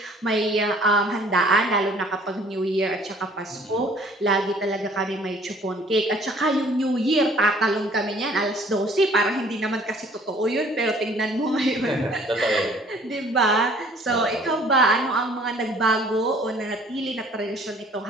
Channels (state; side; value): normal; both; correlation 0.55